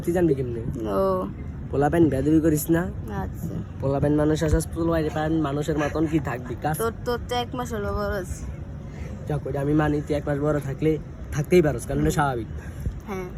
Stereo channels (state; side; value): identical; both; correlation 1.00